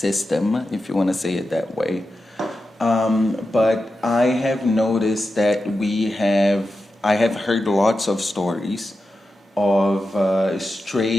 if you want to say it that way. But I have noticed that I have heard lots of stories of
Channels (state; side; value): normal; both; correlation 0.90